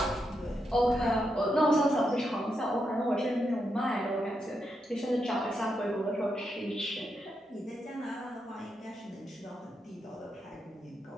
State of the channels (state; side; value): normal; both; correlation 0.83